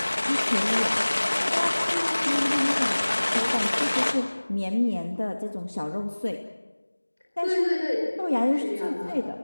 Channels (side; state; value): both; inverted; correlation -1.00